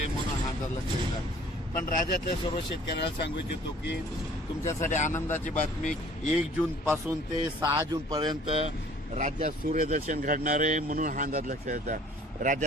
म्हणून हा अंदाज लक्षात येतात। पण राज्यातल्या सर्व शेतकऱ्यांना सांगू इच्छितो की तुमच्यासाठी आनंदाची बातमी 1 जून पासून ते 6 जून पर्यंत राज्यात सूर्यदर्शन घडणार आहे म्हणून हा अंदाज लक्षात येतात।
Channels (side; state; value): both; normal; correlation 0.53